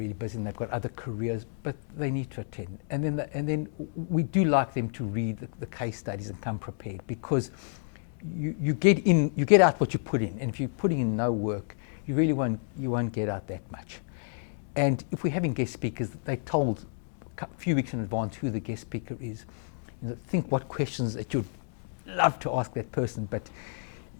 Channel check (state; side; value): silent; right; digital silence